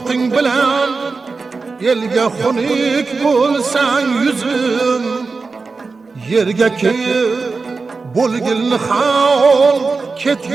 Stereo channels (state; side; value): quieter; left; 4.3 dB